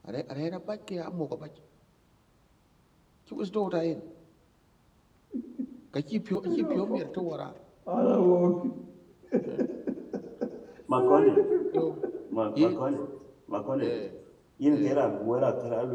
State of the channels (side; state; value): both; identical; correlation 1.00